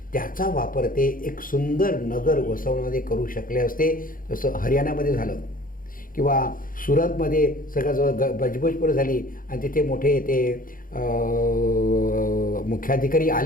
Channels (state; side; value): late; right; 0.40 ms